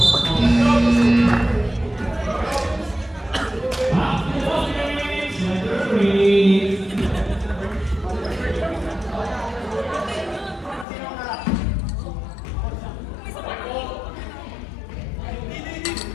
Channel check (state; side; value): drops out; right; at 10.9 s